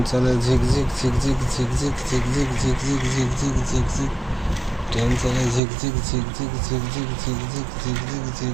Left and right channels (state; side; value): drops out; left; at 5.6 s